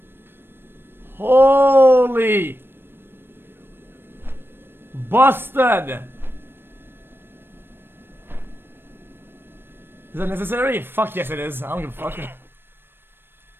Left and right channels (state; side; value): late; left; 0.10 ms